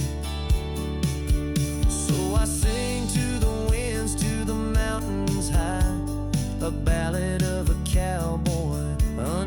So I sing to the winds, to the mountains high, a ballad of a cowboy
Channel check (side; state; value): both; identical; correlation 1.00